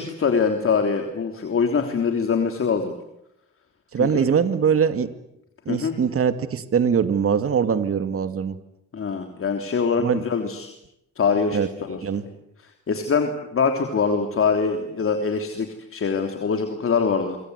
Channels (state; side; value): normal; both; correlation 0.05